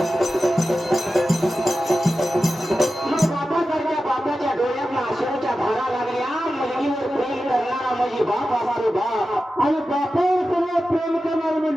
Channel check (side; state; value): both; normal; correlation 0.93